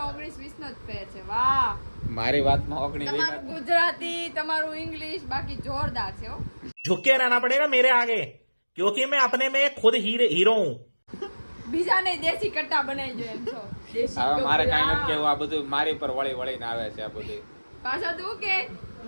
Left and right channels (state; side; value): inverted; both; correlation -1.00